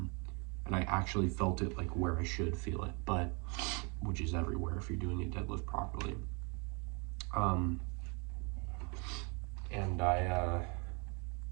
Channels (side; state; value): left; quieter; 32.9 dB